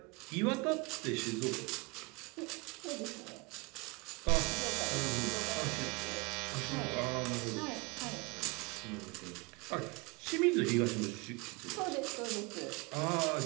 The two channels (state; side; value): quieter; left; 27.5 dB